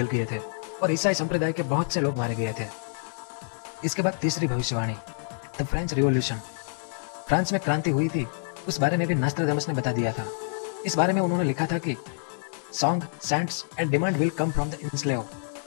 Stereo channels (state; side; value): silent; right; digital silence